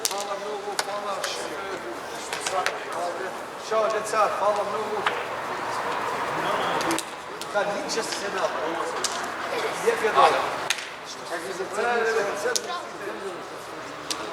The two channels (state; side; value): identical; both; correlation 1.00